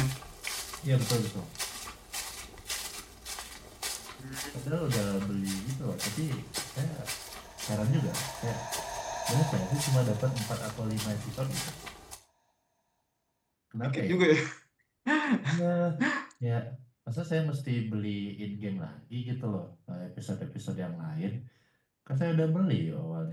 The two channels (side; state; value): both; identical; correlation 1.00